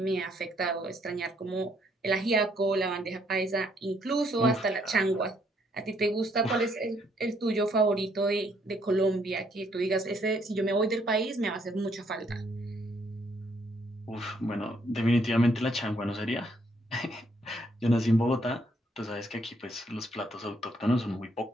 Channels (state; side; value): normal; both; correlation 0.70